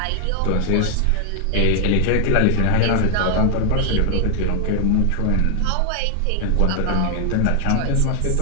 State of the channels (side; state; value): both; different; correlation 0.00